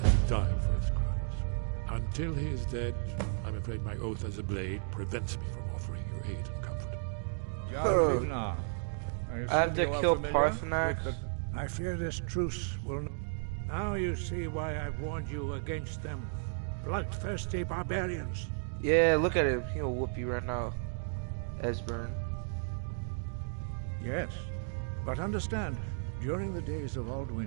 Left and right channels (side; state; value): left; silent; digital silence